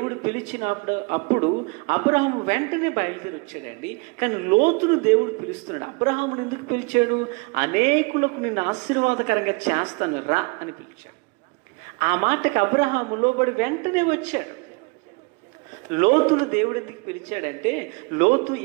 అప్పుడు అబ్రహాము వెంటనే బయలుదేరి వచ్చాడండి. కానీ లోతును దేవుడు పిలుస్తున్నాడు. అబ్రహామును ఎందుకు పిలిచాడు? అనేకులకు నిన్ను ఆశీర్వాదకరంగా చేస్తాను రా అని పిలిచాడు. ఆ మాటకు అబ్రహాము లోబడి వెంటనే వచ్చాడు. లోతును దేవుడు ఎందుకు పిలిచాడంటే, లోతు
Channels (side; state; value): left; quieter; 29.4 dB